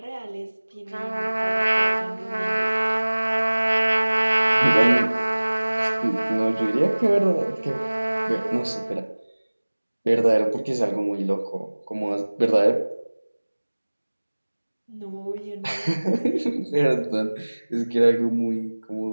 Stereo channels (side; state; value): both; inverted; correlation -1.00